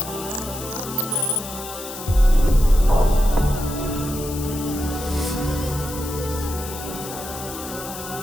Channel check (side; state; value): left; noise; hiss, 11 dB below the sound